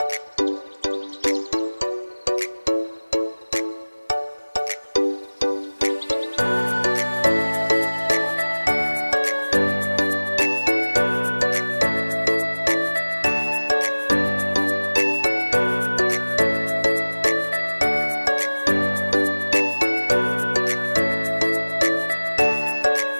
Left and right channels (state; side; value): inverted; both; correlation -1.00